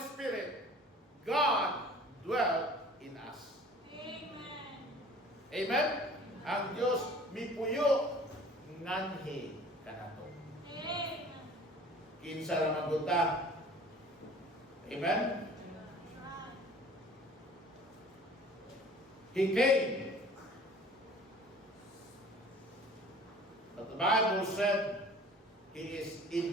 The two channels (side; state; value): both; normal; correlation 0.48